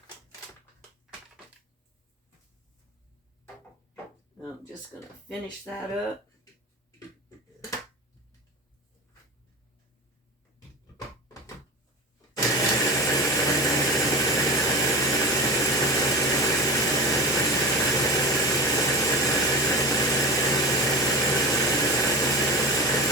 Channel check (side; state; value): both; normal; correlation 0.28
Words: I'm just going to finish that up.